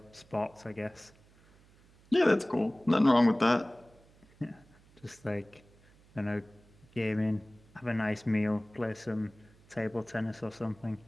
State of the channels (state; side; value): noise; right; hum, 28 dB below the sound